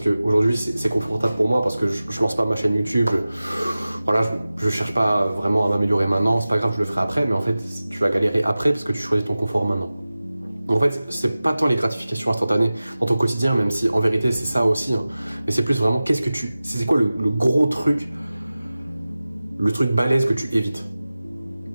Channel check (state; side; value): inverted; both; correlation -0.96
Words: c'est confortable pour moi parce que je lance pas ma chaîne YouTube. Voilà, je cherche pas vraiment à m'améliorer maintenant. C'est pas grave, je le ferai après. Mais en fait, tu vas galérer après parce que tu choisis ton confort maintenant. En fait, c'est pas tant les gratifications instantanées dans ton quotidien, même si en vérité c'est ça aussi, hein. Mais c'est plus vraiment c'est quoi le gros truc, le truc balèze que tu évites.